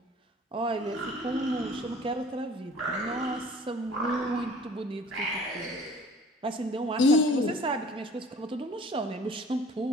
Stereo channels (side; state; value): both; normal; correlation 0.49